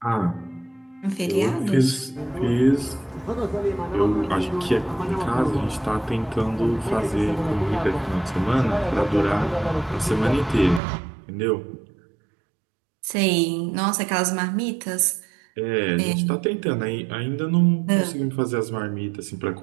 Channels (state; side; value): drops out; left; at 10.8 s